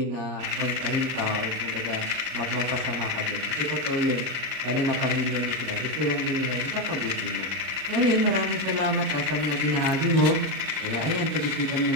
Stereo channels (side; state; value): left; late; 38 ms